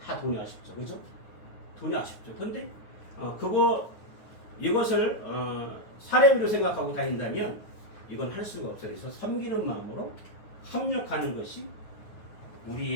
다 돈이 아쉽죠. 그죠? 돈이 아쉽죠. 근데 이것을 사례비로 생각하고 다닌다면 이건 할 수가 없어요. 그래서 섬기는 마음으로 협력하는 것이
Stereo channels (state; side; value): late; right; 9.4 ms